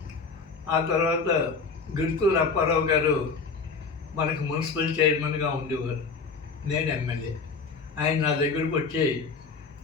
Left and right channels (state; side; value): quieter; right; 4.8 dB